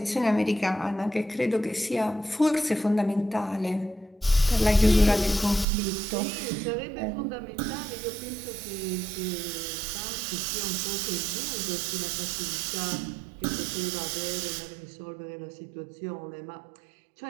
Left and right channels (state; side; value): drops out; left; at 5.7 s